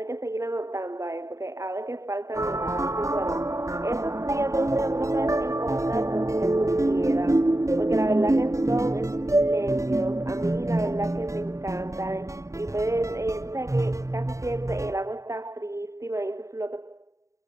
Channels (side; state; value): left; late; 0.15 ms